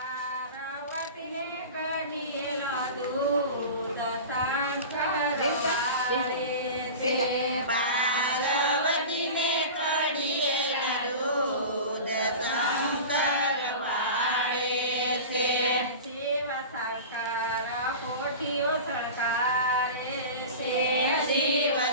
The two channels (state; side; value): inverted; both; correlation -0.33